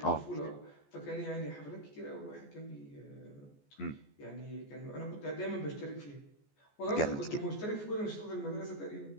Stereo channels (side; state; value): right; late; 14 ms